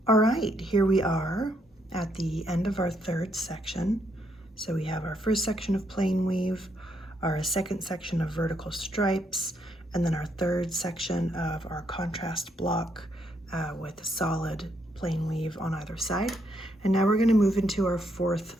All right, here we are at the end of our third section. So we have our first section of plain weave, our second section of vertical stripes, and then our third section of our contrast block with solid plain weave on either side. And now we're going to move into our fourth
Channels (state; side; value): normal; both; correlation 0.75